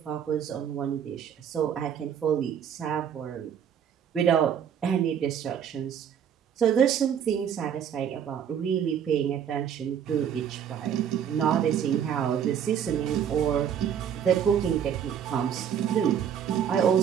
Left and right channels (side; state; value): left; quieter; 8.6 dB